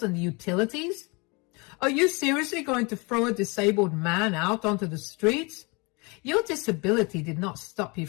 and the utilities? Are you seriously going to throw a disabled man out onto the streets? Your disability did not stop you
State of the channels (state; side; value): quieter; right; 28.9 dB